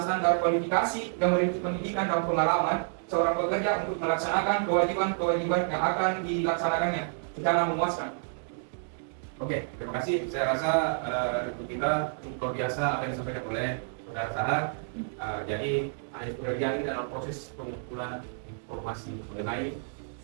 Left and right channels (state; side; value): silent; left; digital silence